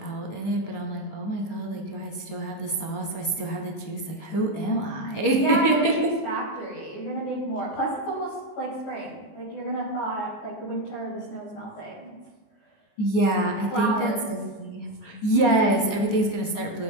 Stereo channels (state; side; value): late; right; 19 ms